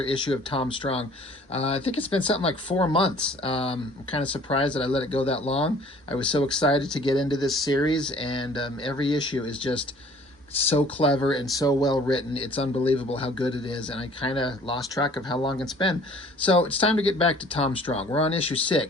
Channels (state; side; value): normal; both; correlation 0.53